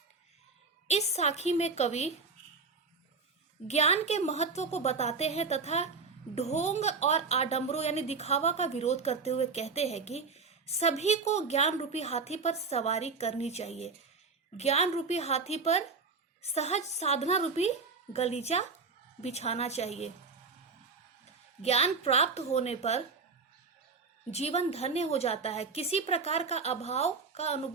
इस साखी में कवि ज्ञान के महत्व को बताते हैं तथा ढोंग और आडंबरों यानी दिखावा का विरोध करते हुए कहते हैं कि सभी को ज्ञान रूपी हाथी पर सवारी करनी चाहिए। ज्ञान रूपी हाथी पर सहज साधना रूपी गलीचा बिछाना चाहिए। ज्ञान प्राप्त होने पर जीवन धन्य हो जाता है, किसी प्रकार का अभाव का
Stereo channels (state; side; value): quieter; left; 4.6 dB